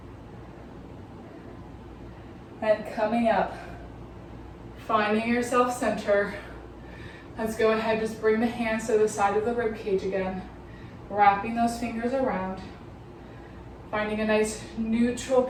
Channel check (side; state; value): both; identical; correlation 1.00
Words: And coming up. Finding your self-center. Let's go ahead, just bring the hands to the side of the rib cage again. Wrapping those fingers around. Finding a nice neutral